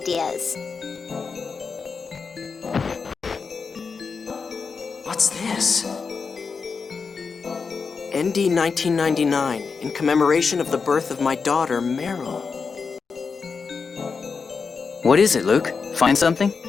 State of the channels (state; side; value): quieter; right; 5.2 dB